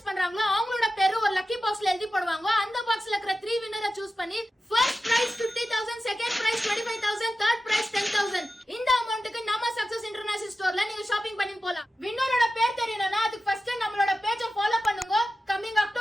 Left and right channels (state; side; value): normal; both; correlation 0.93